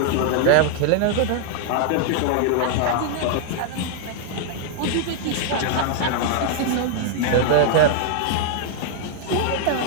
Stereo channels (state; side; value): different; both; correlation -0.01